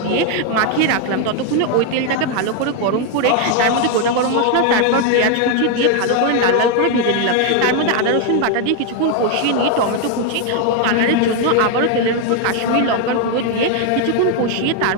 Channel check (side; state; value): both; different; correlation 0.01